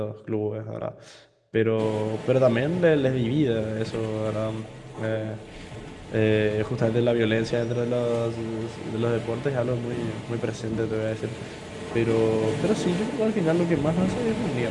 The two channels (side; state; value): both; identical; correlation 1.00